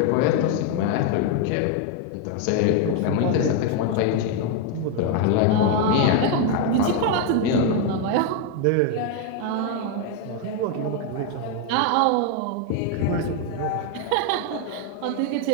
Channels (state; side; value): different; both; correlation 0.01